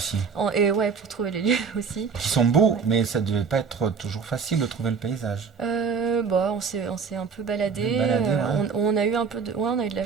Et ouais, pour trouver les lieux aussi. qui sont beaux, mais ça devait pas être toujours facile de trouver le paysage. On s'est un peu baladé. Ouais. On a eu un peu on a eu de la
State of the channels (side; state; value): left; quieter; 5.7 dB